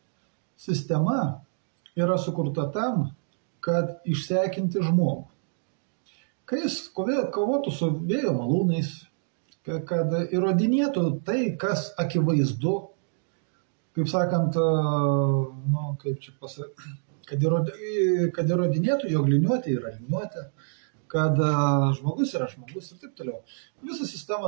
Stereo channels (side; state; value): left; silent; digital silence